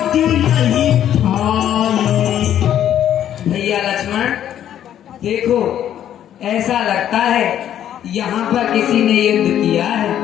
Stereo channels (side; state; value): right; quieter; 10.7 dB